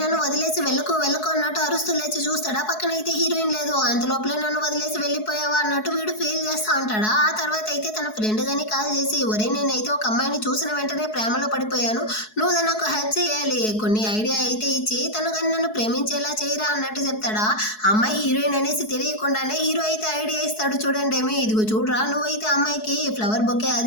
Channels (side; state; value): right; late; 4.7 ms